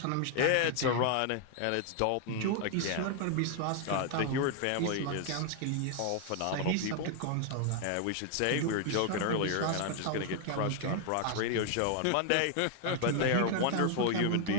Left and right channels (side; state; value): both; different; correlation 0.00